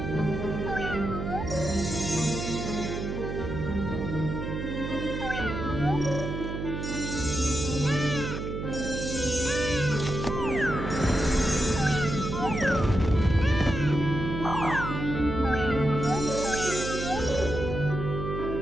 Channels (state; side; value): noise; right; hum, 4 dB below the sound